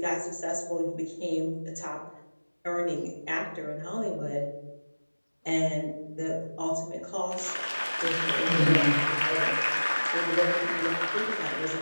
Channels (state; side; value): inverted; both; correlation -1.00